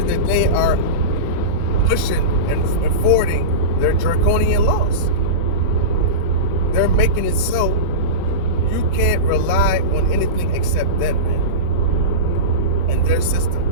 that they are pushing and forwarding their draconian laws. They're making it so you can't rely on anything except them, man, and their system.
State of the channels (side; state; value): both; normal; correlation -0.18